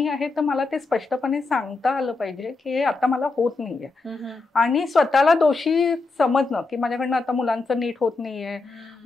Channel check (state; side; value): quieter; right; 3.6 dB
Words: आहे तर मला ते स्पष्टपणे सांगता आलं पाहिजे की हे आता मला होत नाहीये. आणि स्वतःला दोषी समजणं की माझ्याकडनं आता मुलांचं नीट होत नाहीये,